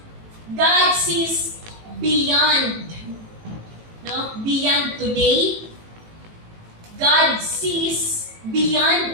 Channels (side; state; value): left; late; 18 ms